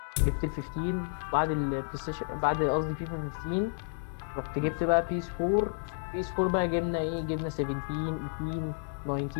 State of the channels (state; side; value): silent; right; digital silence